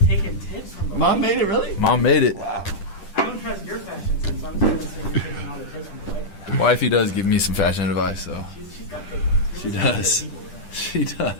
Taking tips from the Mom made it, really? Mom made it. Wow. I don't trust your fashion sense, so I'm just going to say you're taking all the tips from the wife. Wifey does give me some fashion advice, so. She's got good ones. She does. She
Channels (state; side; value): late; right; 10 ms